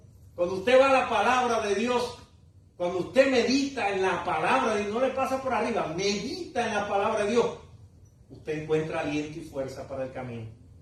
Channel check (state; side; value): identical; both; correlation 1.00